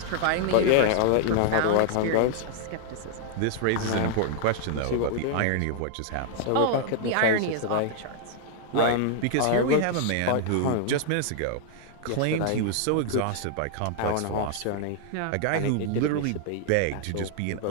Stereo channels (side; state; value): both; different; correlation -0.01